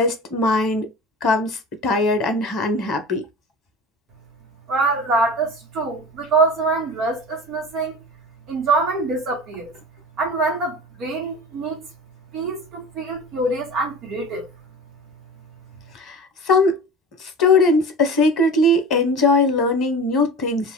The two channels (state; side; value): normal; both; correlation 0.34